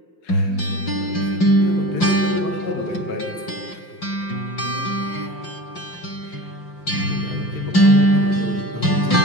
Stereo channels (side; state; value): right; late; 5.7 ms